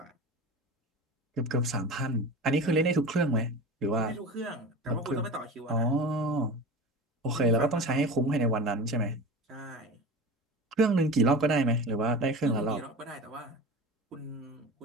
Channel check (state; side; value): normal; both; correlation 0.31